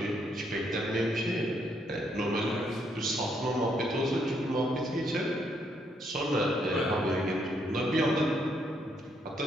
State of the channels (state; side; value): normal; both; correlation 0.74